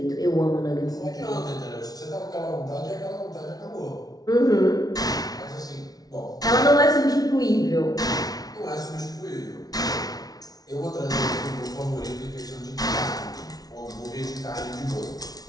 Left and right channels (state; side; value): late; right; 0.18 ms